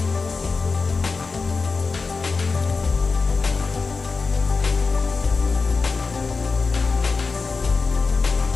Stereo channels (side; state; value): right; quieter; 4.4 dB